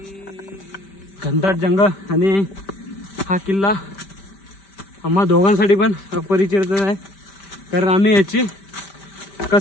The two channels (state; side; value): late; right; 5.1 ms